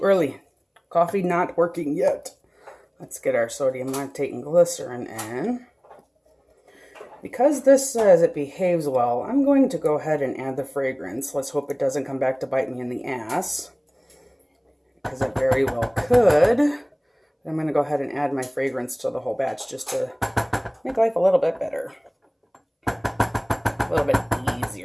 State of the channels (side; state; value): both; identical; correlation 1.00